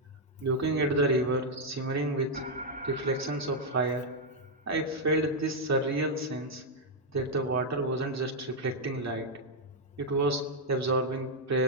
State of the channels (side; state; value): both; normal; correlation -0.02